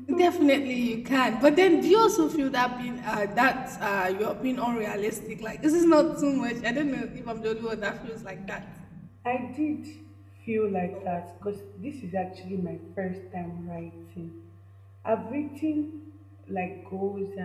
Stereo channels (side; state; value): both; identical; correlation 1.00